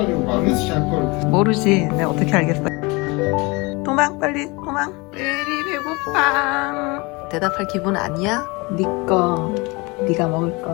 모르지. 내가 어떻게 알겠어. 도망 빨리 도망. 레디 배고파. 대답할 기분 아니야? 니꺼. 네가 먹을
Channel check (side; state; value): right; quieter; 26.0 dB